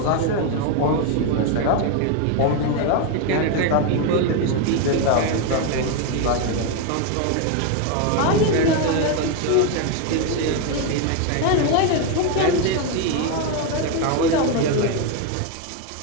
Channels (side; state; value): both; different; correlation 0.01